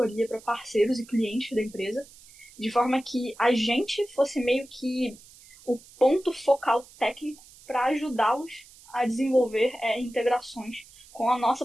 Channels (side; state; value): right; noise; hiss, 23 dB below the sound